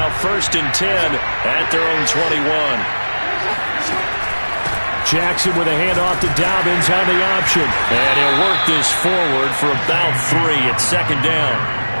first and 10 at their own 21. Jackson with a handoff to Dobbins on the option. And he'll work this forward for about 3 at second down.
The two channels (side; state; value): both; inverted; correlation -1.00